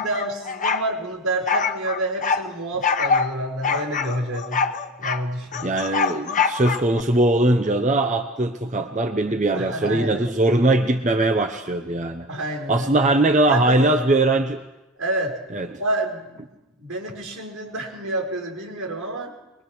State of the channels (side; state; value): both; normal; correlation 0.31